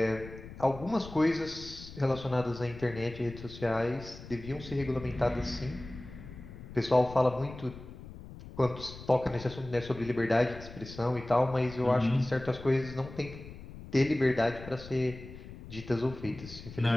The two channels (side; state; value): left; noise; rumble, 14 dB below the sound